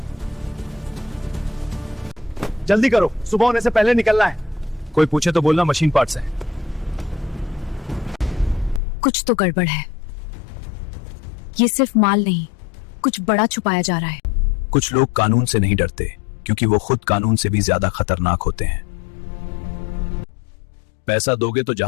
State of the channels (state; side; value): drops out; right; at 8.8 s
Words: जल्दी करो, सुबह होने से पहले निकलना है। कोई पूछे तो बोलना मशीन पार्ट्स हैं। कुछ तो गड़बड़ है। ये सिर्फ माल नहीं, कुछ बड़ा छुपाया जा रहा है। कुछ लोग कानून से नहीं डरते क्योंकि वो खुद कानून से भी ज्यादा खतरनाक होते हैं। पैसा दोगे तो